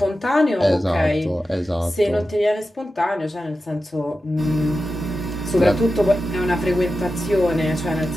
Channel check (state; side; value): normal; both; correlation 0.92